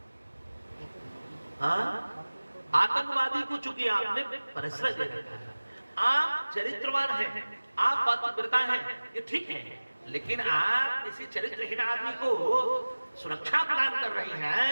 हाँ, आतंकवादी को चूंकि आपने परिश्रम दे रखा है, आप चरित्रवान हैं, आप पतिव्रता हैं, ये ठीक है, लेकिन आप किसी चरित्रहीन आदमी को सुरक्षा प्रदान कर रही हैं,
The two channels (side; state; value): both; inverted; correlation -1.00